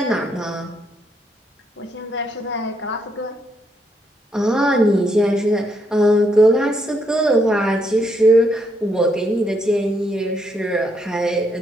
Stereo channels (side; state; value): both; normal; correlation 0.75